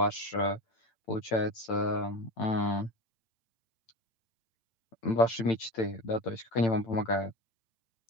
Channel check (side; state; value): right; late; 8.9 ms